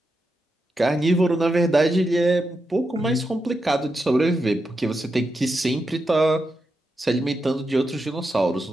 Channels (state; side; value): normal; both; correlation 0.86